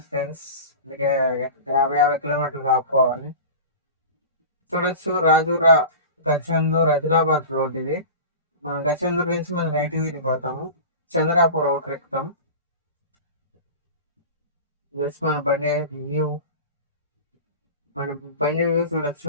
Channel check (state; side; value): inverted; both; correlation -0.34